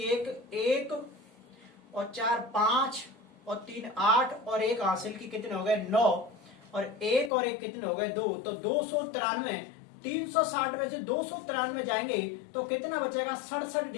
1 1 और 4 5 और 3 8 और 1 हासिल की कितने हो गए 9 और 1 और 1 कितने हो गए 2, तो 293। 360 में से 293 जाएंगे तो कितना बचेगा 67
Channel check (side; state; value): right; drops out; at 7.3 s